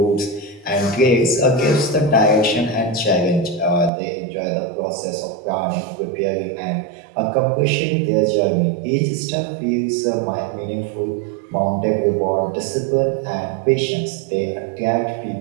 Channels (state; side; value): drops out; left; at 3.9 s